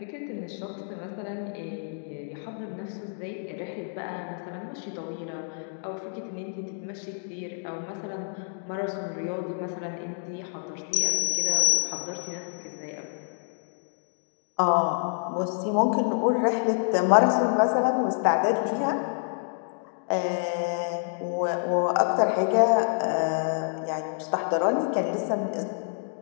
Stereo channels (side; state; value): right; silent; digital silence